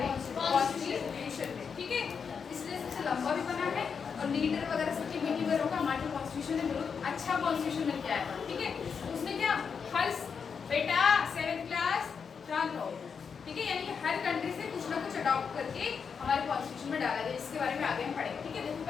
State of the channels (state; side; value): quieter; right; 6.2 dB